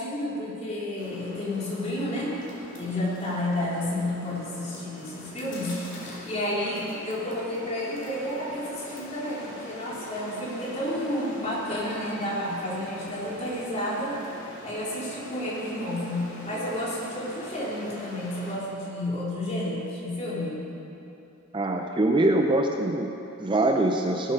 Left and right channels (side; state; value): both; normal; correlation 0.43